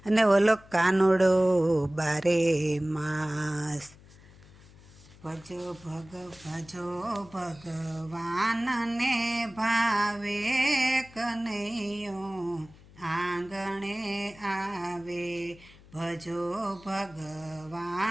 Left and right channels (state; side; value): noise; left; hum, 23 dB below the sound